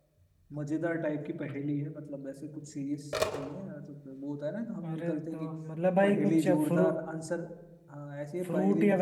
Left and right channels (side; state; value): both; identical; correlation 1.00